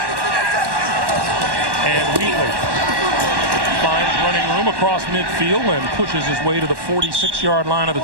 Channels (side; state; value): left; late; 1.1 ms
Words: And Wheatley finds running room across midfield and pushes his way to the 46-yard line of the